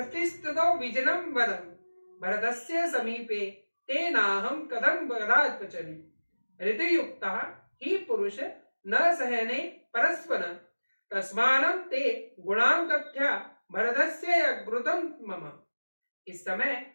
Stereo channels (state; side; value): inverted; both; correlation -1.00